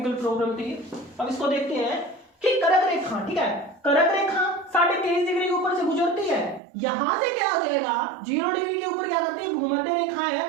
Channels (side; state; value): left; drops out; at 6.6 s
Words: प्रॉब्लम थी। अब इसको देखते हैं कि कर्क रेखा। ठीक है, कर्क रेखा 23.5 डिग्री के ऊपर से गुजरती है। यहां से क्या हो जाएगा? 0 डिग्री के ऊपर क्या करते हैं? भूमध्य रेखा है